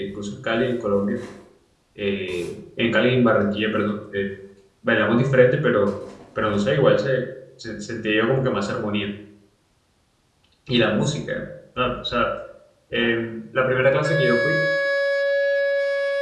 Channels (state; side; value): identical; both; correlation 1.00